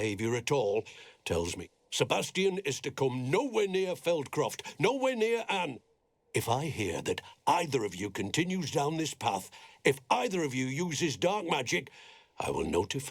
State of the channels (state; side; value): identical; both; correlation 1.00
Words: at all tells me Sebastian is to come nowhere near Feldcroft, nowhere near Anne. If I hear that either of you continues down this path, if either of you uses dark magic, I will